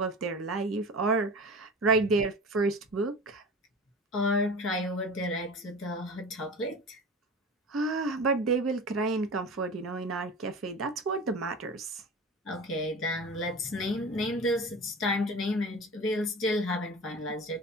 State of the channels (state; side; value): normal; both; correlation 0.34